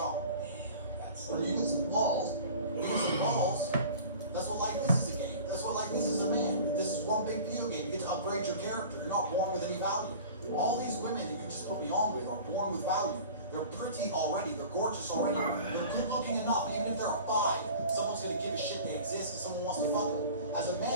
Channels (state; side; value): inverted; both; correlation -0.41